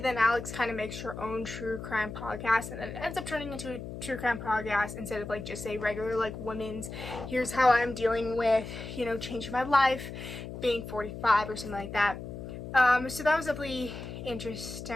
Alex kind of makes her own true crime podcast, and then it ends up turning into a true crime podcast instead of like just a regular like women's, here's how I'm dealing with, you know, changing my life, being 45 or something like that. So that was definitely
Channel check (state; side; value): noise; left; hum, 9 dB below the sound